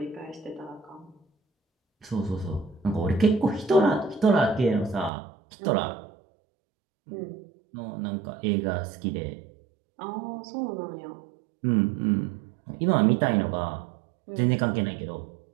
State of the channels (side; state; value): left; drops out; at 5.1 s